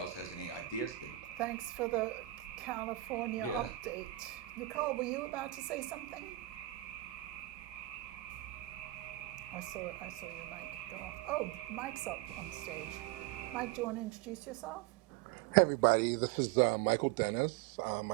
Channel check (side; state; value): left; quieter; 16.5 dB